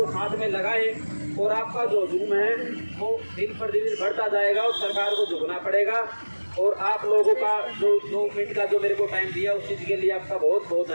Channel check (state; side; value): inverted; both; correlation -1.00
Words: साथ में लगाए और आपका जो हजूम है वो दिन पर दिन बढ़ता जाएगा और सरकार को झुकना पड़ेगा। और आप लोगों का जो 2 मिनट का जो मेरे को टाइम दिया उस चीज़ के लिए आपका बहुत बहुत